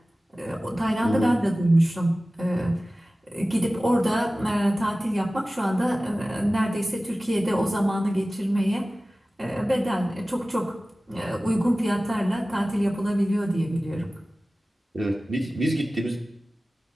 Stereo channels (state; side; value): normal; both; correlation 0.97